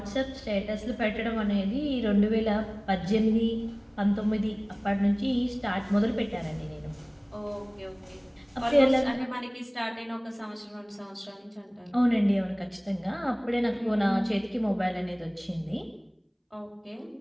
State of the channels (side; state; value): both; identical; correlation 1.00